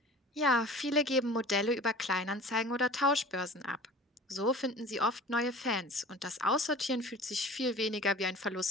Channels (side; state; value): both; normal; correlation 0.41